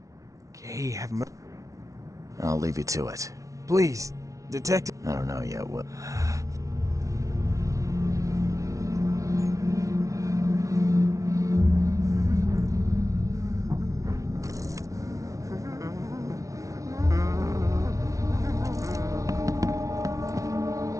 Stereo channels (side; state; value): left; late; 0.16 ms